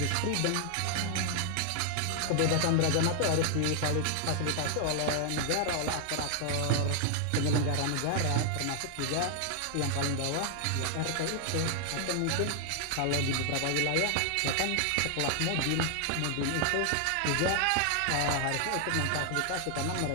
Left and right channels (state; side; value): different; both; correlation 0.00